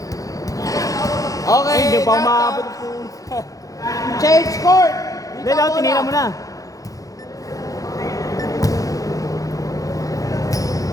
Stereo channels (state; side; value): late; right; 0.17 ms